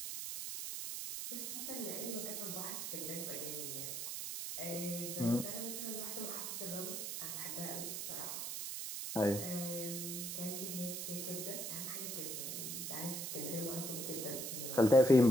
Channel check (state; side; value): noise; right; hiss, 4 dB below the sound